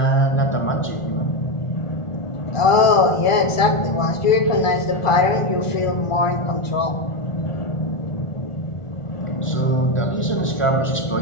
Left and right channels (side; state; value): right; late; 1.4 ms